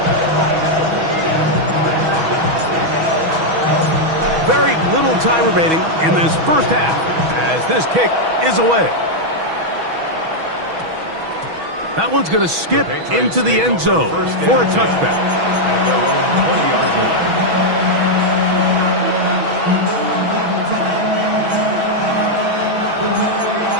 Very little time remaining in this first half as this kick is away. That one's going to skip into the end zone for a touchback. At their own 20-yard line.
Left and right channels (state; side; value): late; left; 6.2 ms